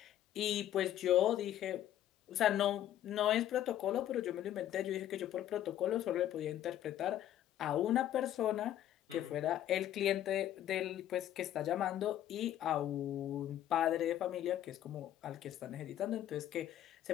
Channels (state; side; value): quieter; right; 11.9 dB